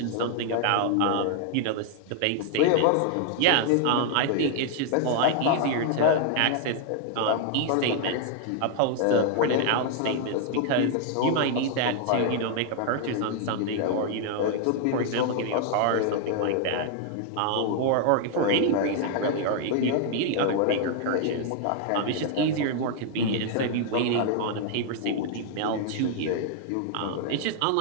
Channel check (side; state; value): both; different; correlation 0.00